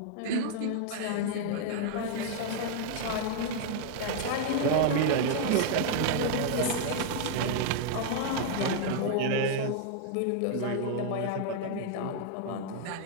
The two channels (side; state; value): both; different; correlation 0.00